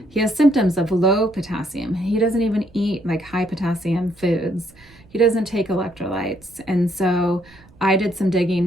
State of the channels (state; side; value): noise; right; rumble, 26 dB below the sound